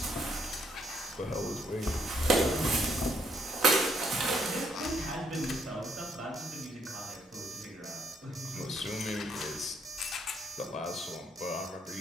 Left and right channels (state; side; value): normal; both; correlation 0.72